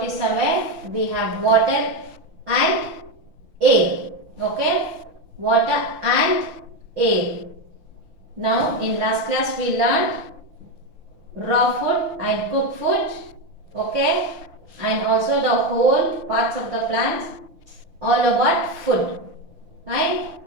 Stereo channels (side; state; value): left; late; 6.2 ms